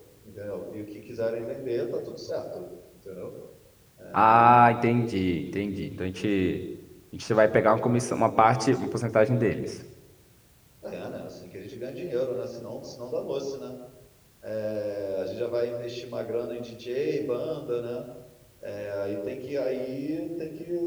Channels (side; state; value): both; identical; correlation 1.00